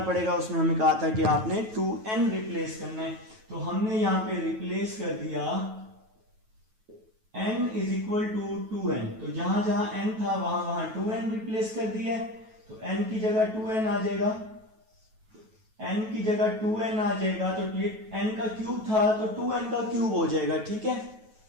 पड़ेगा। उसमें हमें कहा था कि आपने 2n रिप्लेस करना है, तो हमने यहाँ पे रिप्लेस कर दिया n is equal to 2n। तो जहां जहां n था वहां वहां 2n रिप्लेस कर दिया है, तो n की जगह 2n आ जाएगा, n की जगह 2n आ जाएगा, तो n का क्यूब था तो 2n का क्यूब हो जाएगा, ठीक है।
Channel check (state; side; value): late; left; 9.2 ms